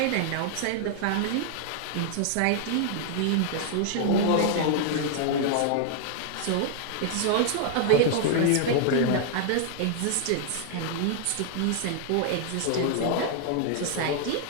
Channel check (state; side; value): different; both; correlation 0.00